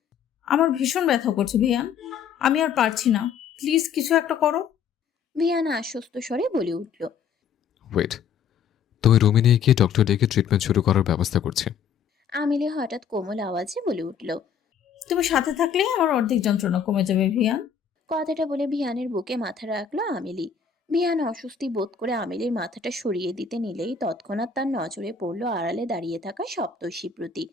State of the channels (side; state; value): right; quieter; 7.1 dB